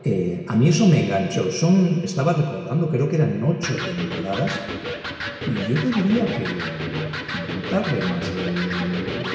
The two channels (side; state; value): both; identical; correlation 1.00